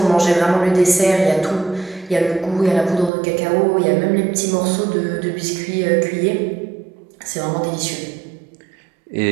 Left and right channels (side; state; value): left; drops out; at 3.1 s